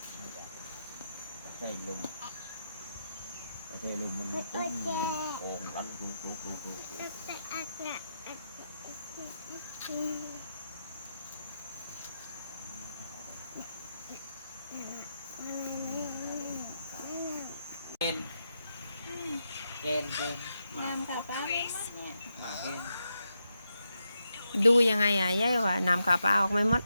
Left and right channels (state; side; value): inverted; both; correlation -0.85